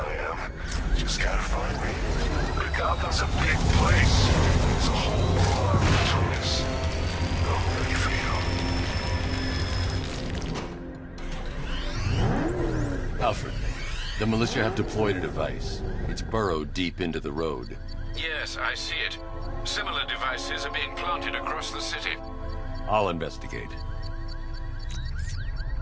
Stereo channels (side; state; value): both; identical; correlation 1.00